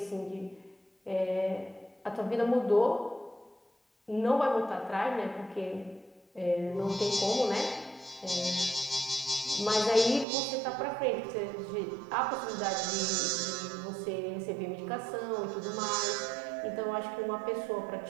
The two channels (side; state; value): left; drops out; at 10.2 s